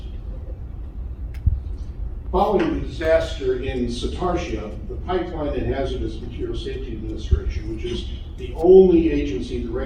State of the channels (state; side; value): identical; both; correlation 1.00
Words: Following the disaster in Satartia, the Pipeline and Hazardous Material Safety Administration, which is the only agency that